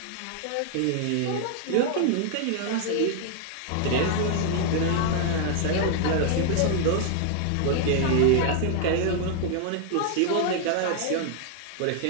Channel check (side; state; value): both; different; correlation 0.00